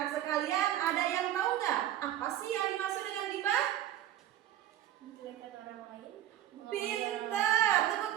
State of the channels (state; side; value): quieter; left; 12.3 dB